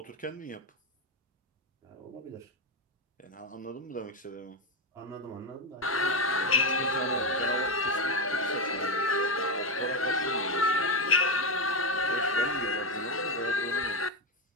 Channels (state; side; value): normal; both; correlation 0.10